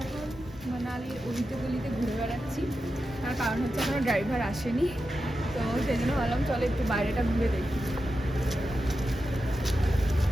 এখন মানালির অলিতে গলিতে ঘুরে বেড়াচ্ছি, তার কারণ হচ্ছে এখনো ড্রাইভার আসেনি। তো সেই জন্য ভাবলাম চলো একটু বাইরেটা ঘুরে দেখি।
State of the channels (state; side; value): normal; both; correlation 0.90